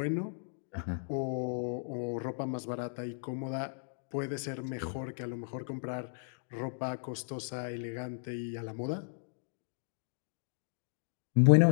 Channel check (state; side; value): silent; right; digital silence